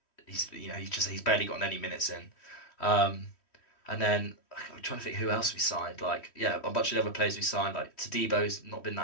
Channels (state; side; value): late; right; 3.1 ms